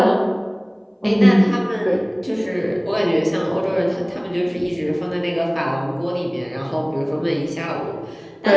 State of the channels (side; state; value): both; identical; correlation 1.00